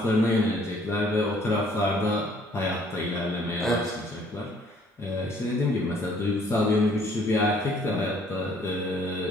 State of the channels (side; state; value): both; normal; correlation 0.60